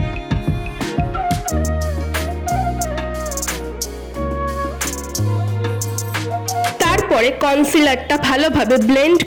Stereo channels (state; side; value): identical; both; correlation 1.00